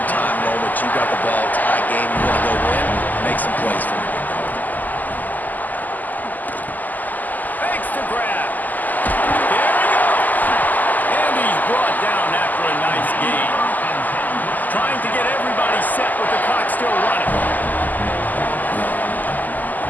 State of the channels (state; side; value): late; right; 0.083 ms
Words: time moment. You got the ball, tie game, you want to go win, make some plays for me. Fakes to grab. There he goes. And he's brought down after a nice gain. Trying to get everybody set with the clock still running.